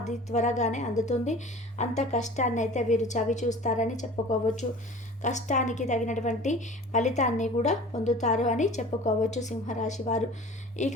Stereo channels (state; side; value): normal; both; correlation 0.42